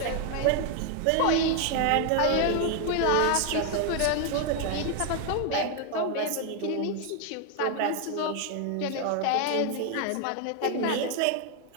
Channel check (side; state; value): both; different; correlation 0.01